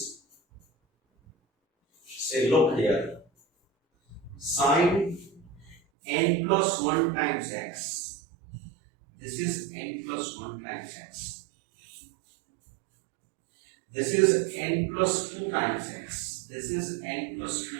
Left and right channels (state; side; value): drops out; left; at 5.8 s